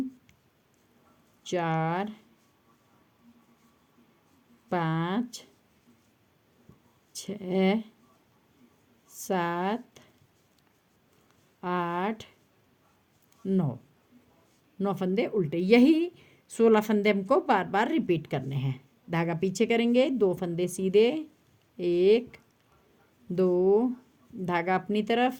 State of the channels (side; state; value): both; identical; correlation 1.00